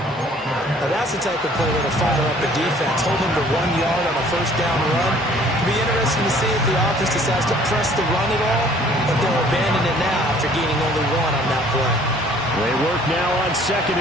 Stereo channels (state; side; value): normal; both; correlation 0.56